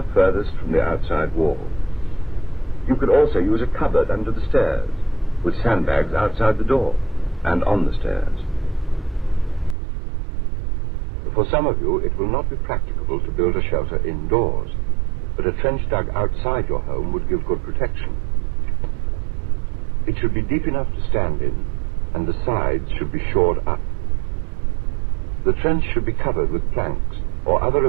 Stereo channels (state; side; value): drops out; left; at 9.8 s